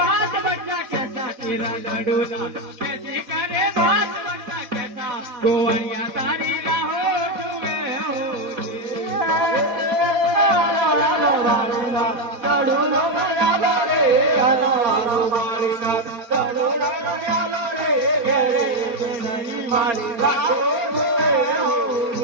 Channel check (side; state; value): left; late; 4.2 ms